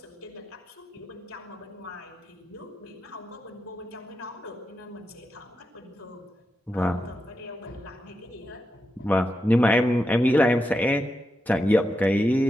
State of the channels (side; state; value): both; normal; correlation 0.87